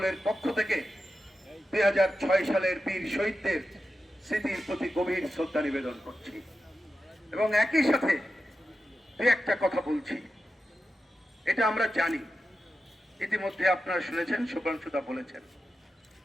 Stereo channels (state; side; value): normal; both; correlation 0.91